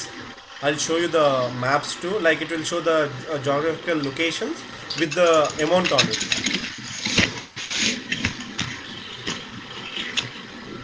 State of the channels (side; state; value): both; identical; correlation 1.00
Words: I'll show you the maps too. Like it will show the geographical locations with the amount on it.